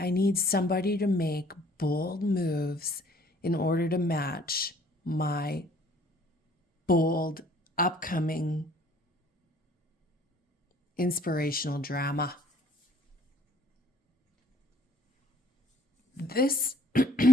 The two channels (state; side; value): normal; both; correlation 0.58